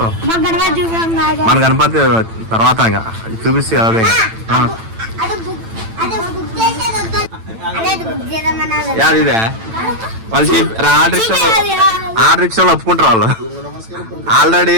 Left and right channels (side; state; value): left; late; 8.9 ms